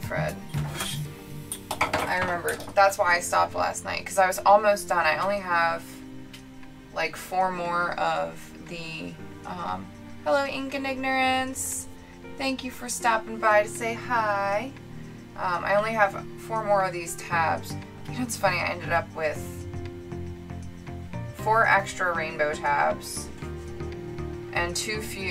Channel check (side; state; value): both; identical; correlation 1.00